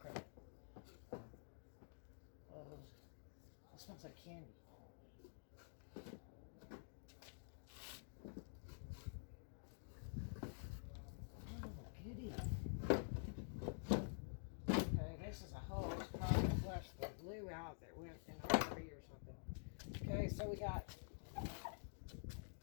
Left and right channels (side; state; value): right; silent; digital silence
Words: It smells like candy. Oh, goody. Okay, this is a hose. Probably flushed the glue out that went in a hurry or something. Okay, so we got